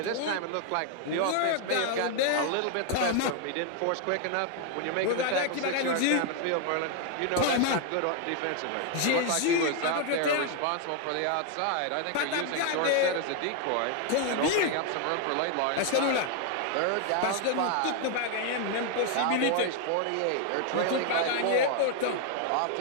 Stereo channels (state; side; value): different; both; correlation 0.00